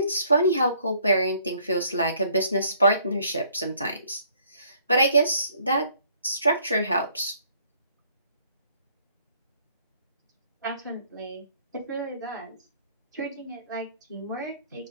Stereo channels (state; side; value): inverted; both; correlation -0.62